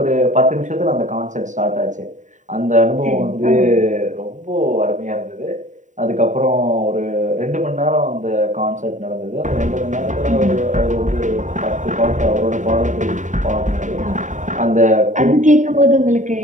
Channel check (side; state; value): left; late; 0.36 ms